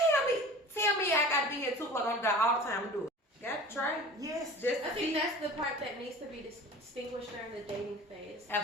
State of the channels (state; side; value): normal; both; correlation 0.40